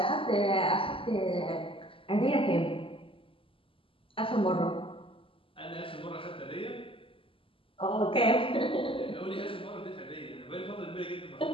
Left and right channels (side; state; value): right; late; 0.26 ms